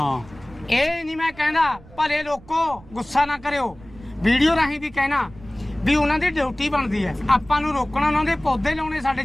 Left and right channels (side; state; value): right; noise; rumble, 22 dB below the sound